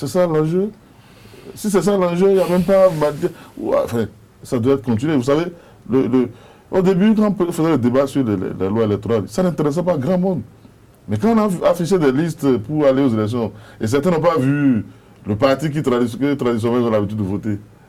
ça l'enjeu. Si c'est ça l'enjeu, il n'y a même pas... Enfin, ça doit être continué. Vous savez, au début, quand on faisait le débat sur la loi électorale, ça n'intéressait pas grand monde. Mais quand on a affiché des listes pour aller aux élections, et certains n'ont pas vu le parti qui traditionnellement ont l'habitude de voter,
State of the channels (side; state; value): both; identical; correlation 1.00